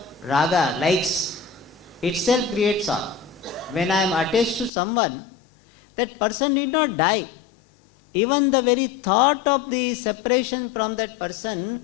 raga, likes, itself creates sorrow. When I am attached to someone, that person need not die. Even the very thought of the separation from that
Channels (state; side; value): drops out; right; at 4.7 s